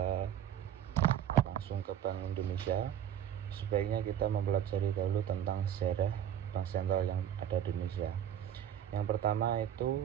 langsung ke Bank Indonesia, sebaiknya kita mempelajari dahulu tentang sejarah Bank Sentral yang ada di Indonesia. Yang pertama itu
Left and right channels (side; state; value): left; quieter; 10.1 dB